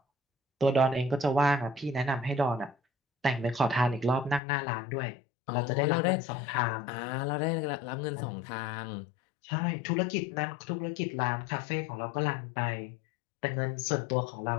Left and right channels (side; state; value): right; drops out; at 4.4 s